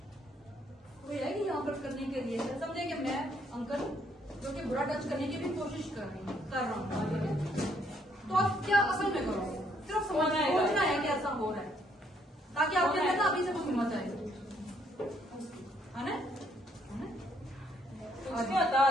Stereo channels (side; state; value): both; normal; correlation 0.69